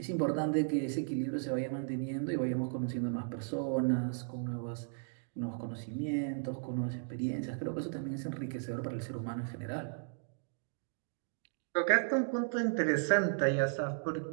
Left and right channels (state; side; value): silent; left; digital silence